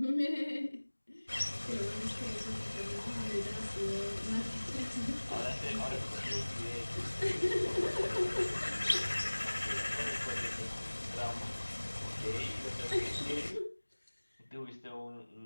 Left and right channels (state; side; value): inverted; both; correlation -1.00